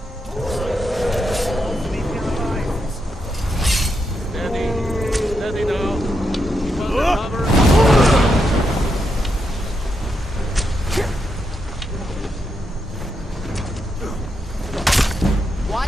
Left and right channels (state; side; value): normal; both; correlation 0.83